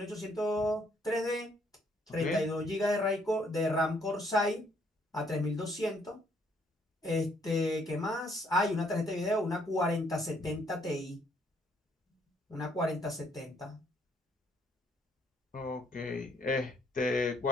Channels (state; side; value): normal; both; correlation 0.68